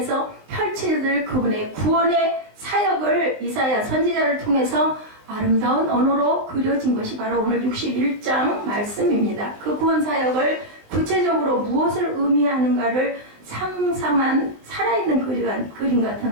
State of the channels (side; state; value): left; late; 19 ms